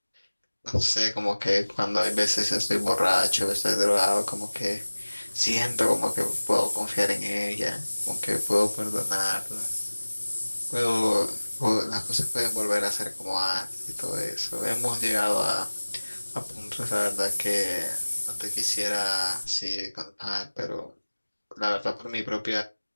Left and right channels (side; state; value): both; inverted; correlation -1.00